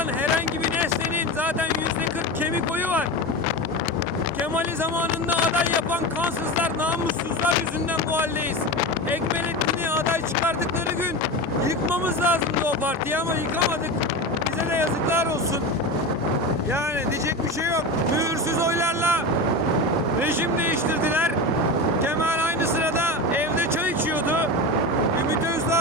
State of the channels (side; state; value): both; normal; correlation 0.24